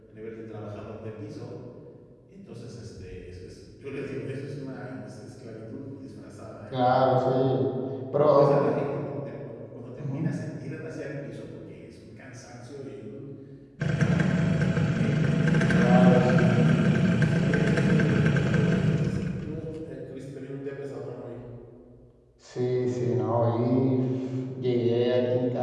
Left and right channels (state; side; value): identical; both; correlation 1.00